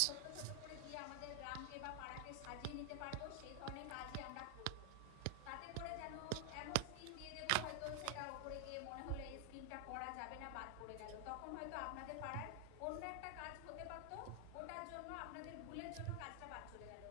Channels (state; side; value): different; both; correlation 0.00